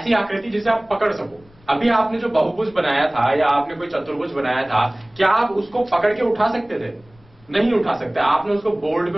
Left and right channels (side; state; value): left; noise; rumble, 29 dB below the sound